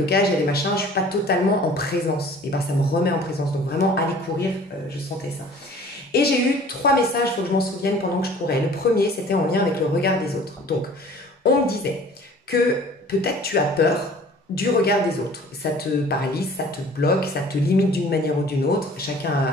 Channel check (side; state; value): both; normal; correlation 0.48